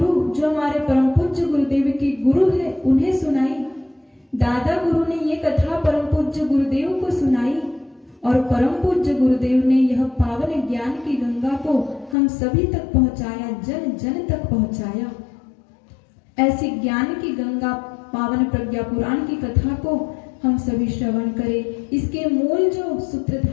जो हमारे परम पूज्य गुरुदेव के गुरु है, उन्हें सुनाई। दादा गुरु ने ये कथा परम पूज्य गुरुदेव को सुनाई, और परम पूज्य गुरुदेव ने यह पावन ज्ञान की गंगा को हम सभी तक पहुंचाया, जन जन तक पहुंचाया। ऐसी ज्ञान की गंगा पावन प्रज्ञा पुराण की कथा को हम सभी श्रवण करें। इसके मूल जो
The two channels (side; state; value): right; drops out; at 12.2 s